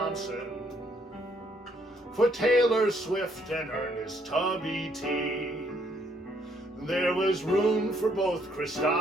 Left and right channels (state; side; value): normal; both; correlation 0.69